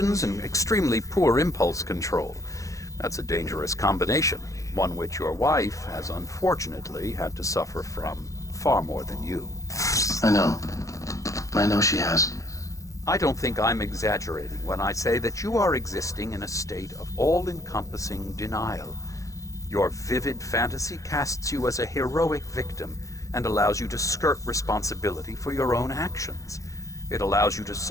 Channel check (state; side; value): late; right; 0.16 ms